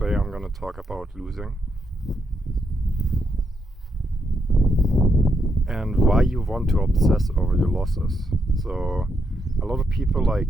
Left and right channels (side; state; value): both; normal; correlation 0.80